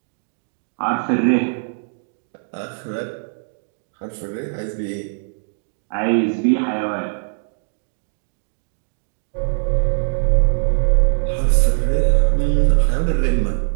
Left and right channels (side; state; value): left; silent; digital silence